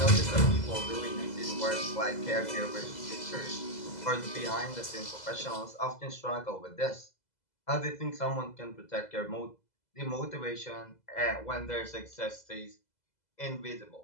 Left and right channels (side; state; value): right; late; 2.0 ms